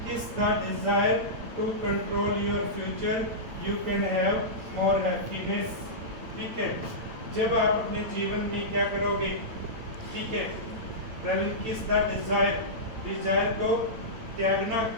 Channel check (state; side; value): late; left; 8.8 ms